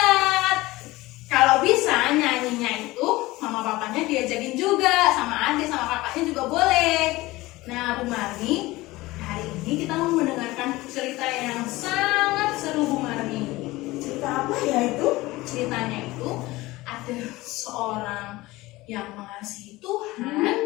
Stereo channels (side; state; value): right; quieter; 19.5 dB